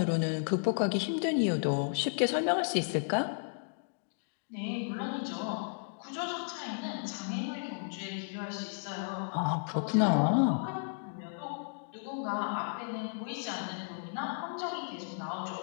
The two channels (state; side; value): silent; right; digital silence